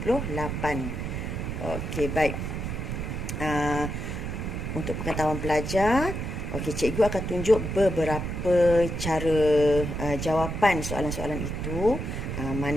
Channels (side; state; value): right; noise; rumble, 4 dB below the sound